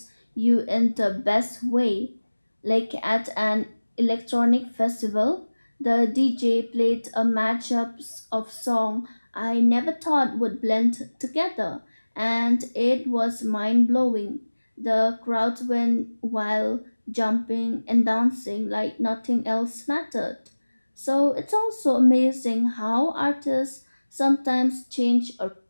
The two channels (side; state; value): both; inverted; correlation -1.00